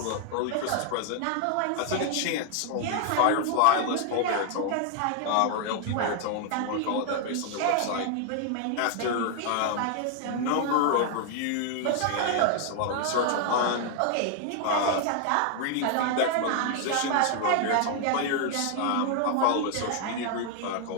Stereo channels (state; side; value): different; both; correlation 0.00